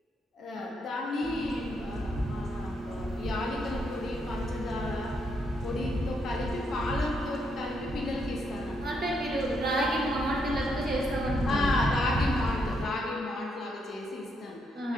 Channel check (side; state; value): both; normal; correlation 0.77